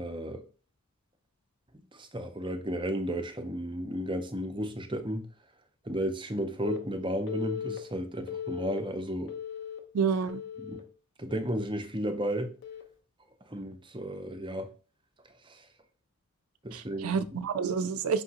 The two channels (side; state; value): both; normal; correlation 0.42